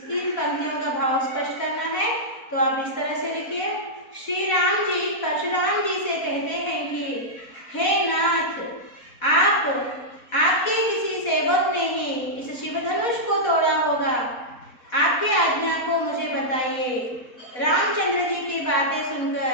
पंक्तियों का भाव स्पष्ट करना है, तो आप इस तरह से लिखिए। श्री राम जी परशुराम जी से कहते हैं कि हे नाथ, आपके किसी सेवक ने ही इस शिवधनुष को तोड़ा होगा। आपके आज्ञा को मुझे बताइए। रामचंद्र जी की बातें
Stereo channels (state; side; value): late; right; 4.1 ms